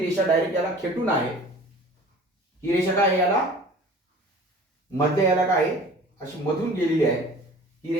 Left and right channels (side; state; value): both; normal; correlation 0.44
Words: डायरेक्ट याला खेटून आहे. ही रेषा काय आहे? याला मध्ये याला काय आहे? अशी मधून गेलेली आहे. ही